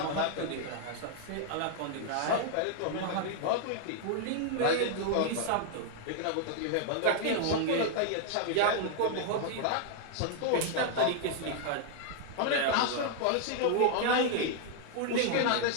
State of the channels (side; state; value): both; different; correlation 0.00